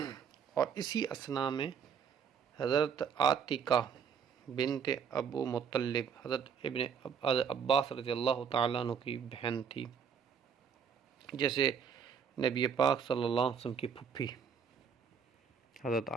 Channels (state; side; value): quieter; left; 6.9 dB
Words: اور اسی اثناء میں حضرت عاتقہ بنت ابو مطلب، حضرت ابن عباس رضی اللہ تعالیٰ عنہ کی بہن تھی، جیسے نبی پاک صلی اللہ علیہ وسلم کی پھپھی حضرت